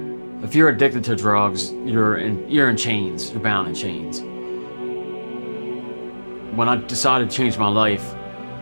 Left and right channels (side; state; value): both; inverted; correlation -1.00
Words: If you're addicted to drugs, you're in chains. You're bound in chains. When I decided to change my life,